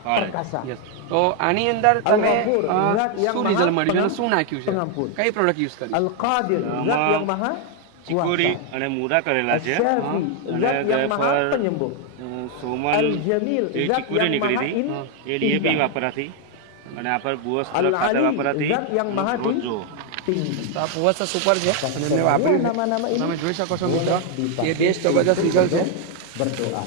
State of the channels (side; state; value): both; different; correlation 0.01